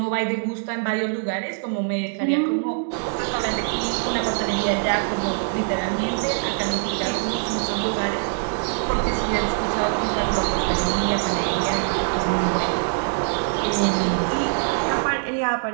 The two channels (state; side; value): silent; left; digital silence